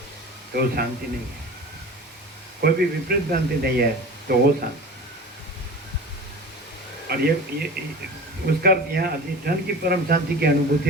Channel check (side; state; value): both; normal; correlation 0.36